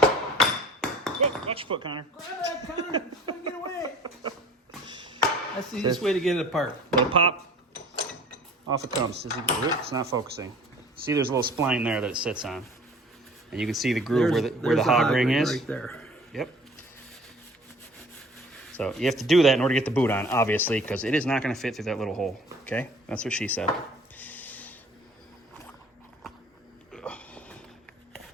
watch your foot, Connor. Grab that, Connor. It's gonna get away. That's the easiest way to get it apart. Little pop. Off it comes. It's not focusing. See, there's a little spline there that it sits on. And you can see the groove where the hog ring is. Right there. Yep. So you have to do that in order to get the boot on, obviously, because it is not going to fit through that little hole. Okay? That's what she said.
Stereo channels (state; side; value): normal; both; correlation 0.49